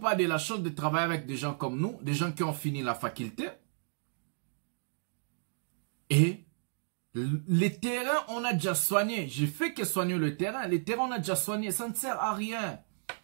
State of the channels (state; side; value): silent; left; digital silence